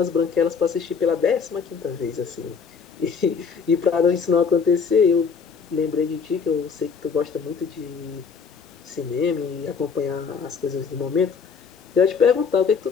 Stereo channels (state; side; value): quieter; right; 5.9 dB